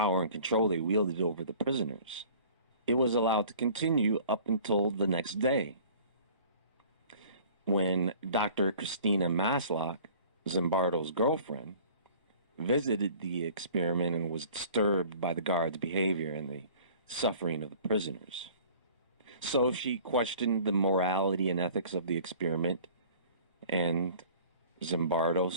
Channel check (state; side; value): inverted; both; correlation -0.49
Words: and control they wielded over the prisoners. It was allowed to continue up until the next day, when Dr. Christina Maslock, Zimbardo's girlfriend, visited the experiment and was disturbed by the guards' behavior and the suffering of the prisoners. So she questioned the morality and ethics of the experiment, and Zimbardo